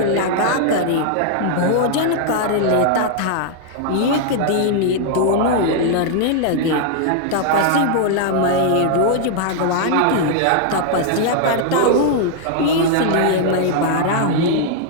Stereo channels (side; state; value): both; different; correlation 0.00